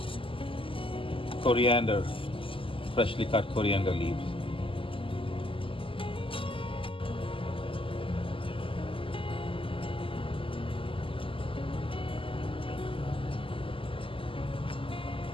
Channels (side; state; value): right; late; 0.25 ms